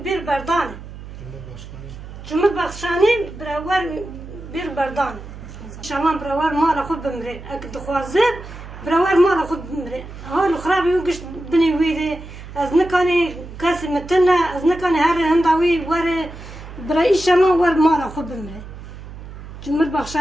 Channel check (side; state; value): right; noise; hum, 14 dB below the sound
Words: bir berdane. Cumhurbaşkanı beraber bir berdane. Şama beraber mala khud bimre. Ak duhazet beraber mala khud bimre. Halu khrabi wi gish bini wida. از نکنی کسی متنه از نکنی هر هنداوی وره برای شما ور مالا خود بمره.